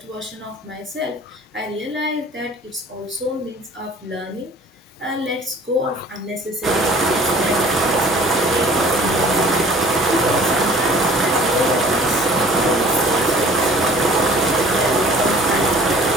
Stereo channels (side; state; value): both; normal; correlation 0.49